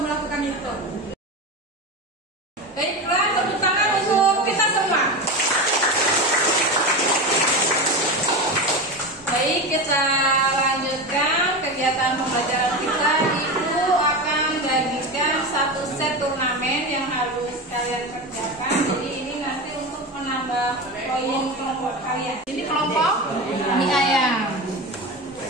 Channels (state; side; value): normal; both; correlation 0.22